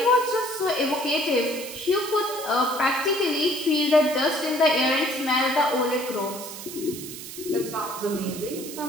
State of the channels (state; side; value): noise; right; hiss, 11 dB below the sound